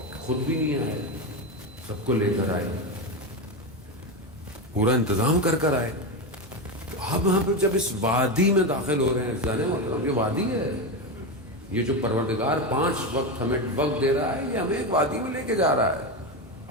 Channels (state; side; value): normal; both; correlation 0.15